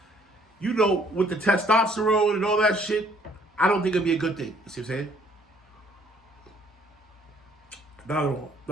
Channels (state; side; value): normal; both; correlation 0.62